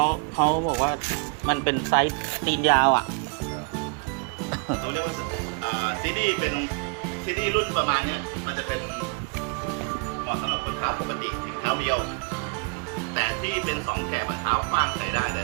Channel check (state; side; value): quieter; left; 35.1 dB